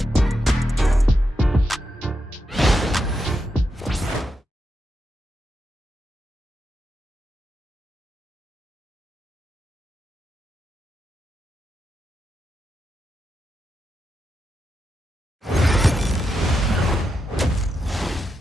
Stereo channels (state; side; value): normal; both; correlation 0.85